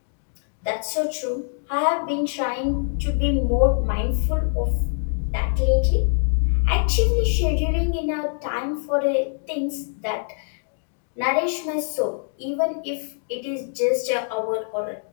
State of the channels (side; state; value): right; silent; digital silence